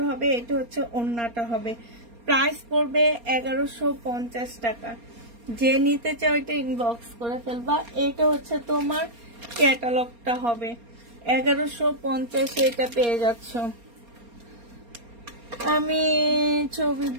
হবে, এটা হচ্ছে ওড়নাটা হবে। প্রাইস পড়বে 1150 টাকা। যে নিতে চাও এটা ইনবক্স করে ফেলবা। এটা হচ্ছে তোমার ক্যাটালগটা হবে। 1150-এ এটা পেয়ে যাচ্ছ। আমি ছবি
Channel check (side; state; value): left; late; 4.3 ms